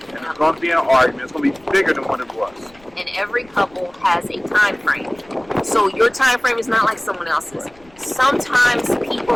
it's gonna be an argument. It's gonna be bigger than what it was. And every couple has a time frame. So your time frame is not like someone else's. Sometimes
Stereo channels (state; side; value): noise; left; rumble, 28 dB below the sound